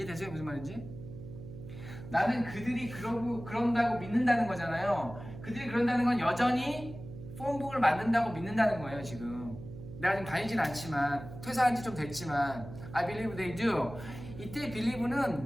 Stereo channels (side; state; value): right; noise; hum, 12 dB below the sound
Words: 무슨 말인지? 나는 그들이 그런다고 믿는다는 거잖아요. 그들이 그런다는 건 여전히 폰북을 만든다고 믿는다는 거예요. 지금 내가 지금 다니진 않지만 퇴사한 지 좀 됐지만 I believe they do. 이때